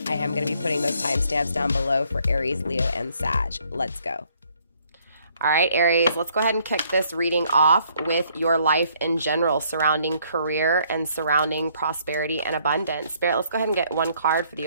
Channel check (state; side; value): inverted; both; correlation -0.66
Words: I am going to be putting those timestamps down below for Aries, Leo, and Sag. Let's go. All right, Aries, let's go ahead and kick this reading off with your life in general, surrounding career and surrounding prosperity and abundance. Spirit, let's go ahead and get one card for